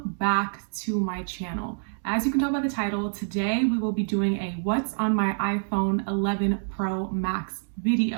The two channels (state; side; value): silent; left; digital silence